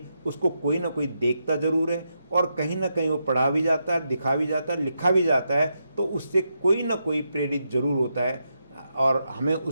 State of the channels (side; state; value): both; inverted; correlation -0.83